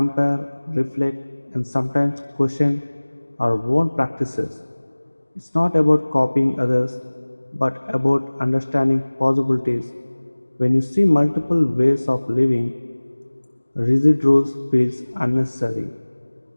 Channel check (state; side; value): inverted; both; correlation -1.00